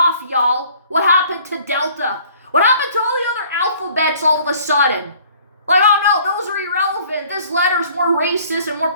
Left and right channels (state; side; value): inverted; both; correlation -0.55